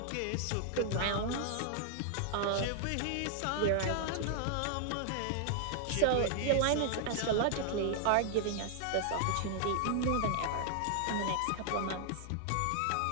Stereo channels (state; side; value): different; both; correlation -0.01